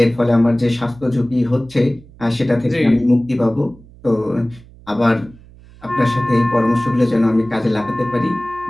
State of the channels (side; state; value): right; noise; hum, 23 dB below the sound